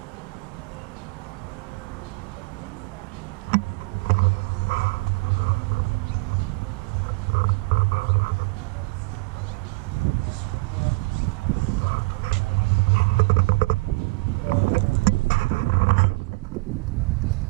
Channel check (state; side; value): quieter; left; 26.2 dB